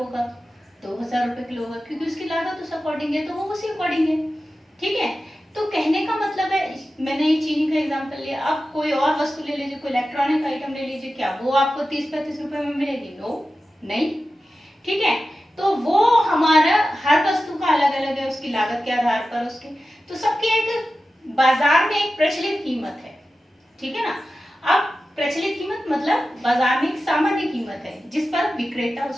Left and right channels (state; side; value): normal; both; correlation 0.93